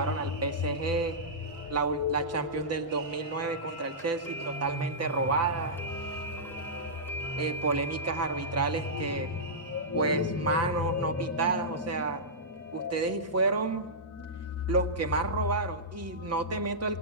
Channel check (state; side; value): normal; both; correlation -0.14